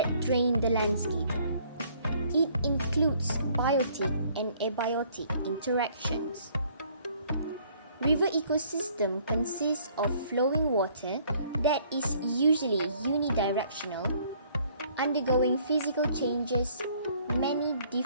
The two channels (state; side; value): inverted; both; correlation -0.61